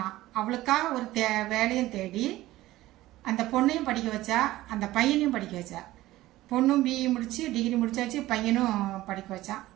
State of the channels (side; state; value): left; quieter; 16.4 dB